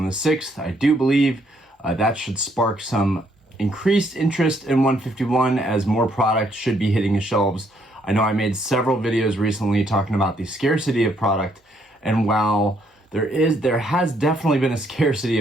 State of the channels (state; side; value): normal; both; correlation 0.70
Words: the 6th. I do believe that should spark some increased interest in 151 as more product should be hitting the shelves. I know I made several videos recently talking about the scarcity of product, and while there has definitely been a scarcity